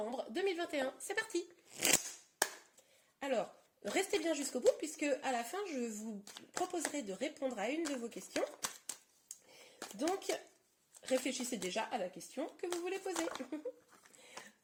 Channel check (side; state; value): both; identical; correlation 1.00